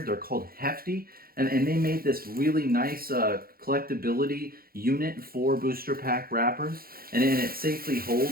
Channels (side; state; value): left; late; 0.43 ms